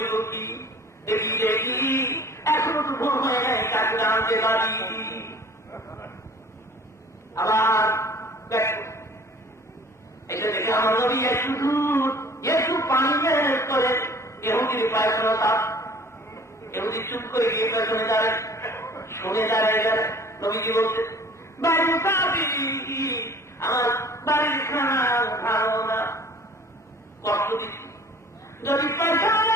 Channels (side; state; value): both; normal; correlation 0.49